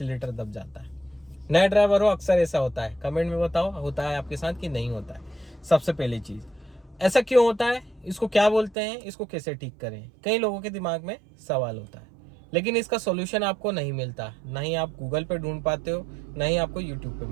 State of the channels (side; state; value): left; drops out; at 8.8 s